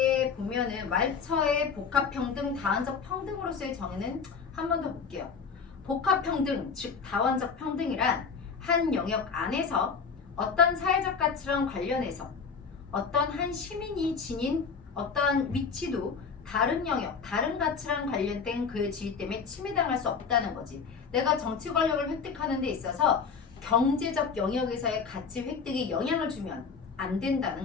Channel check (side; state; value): right; quieter; 5.7 dB